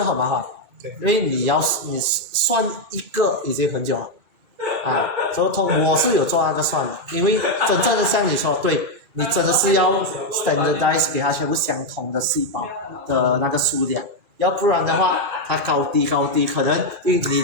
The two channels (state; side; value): late; left; 1.4 ms